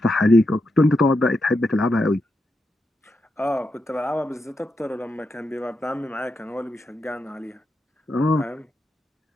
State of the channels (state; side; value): normal; both; correlation 0.85